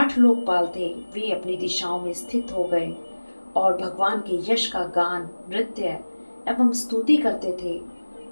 लोकपाल थे वे अपनी दिशाओं में स्थित हो गए और भगवान के यश का गान, नृत्य एवं स्तुति करते थे।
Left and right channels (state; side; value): inverted; both; correlation -1.00